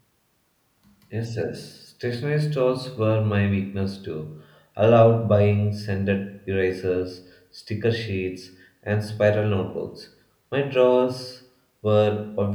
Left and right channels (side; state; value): both; identical; correlation 1.00